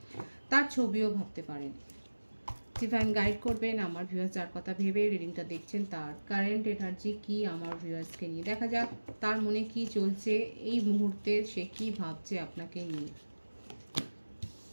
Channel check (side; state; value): both; inverted; correlation -1.00